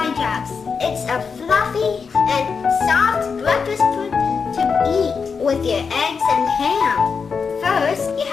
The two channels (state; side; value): quieter; right; 5.6 dB